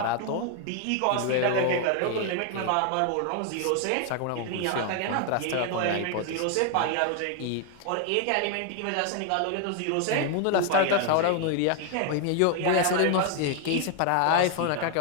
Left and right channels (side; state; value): both; different; correlation 0.00